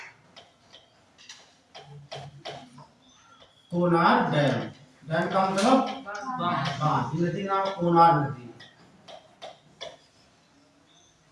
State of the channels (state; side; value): identical; both; correlation 1.00